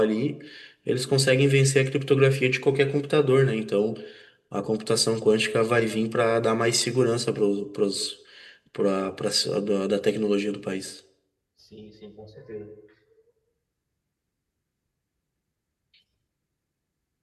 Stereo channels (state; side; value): identical; both; correlation 1.00